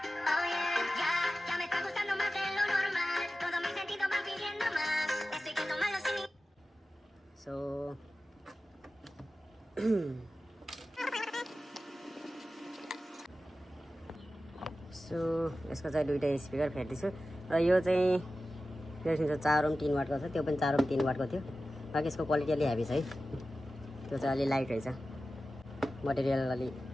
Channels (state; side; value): normal; both; correlation 0.94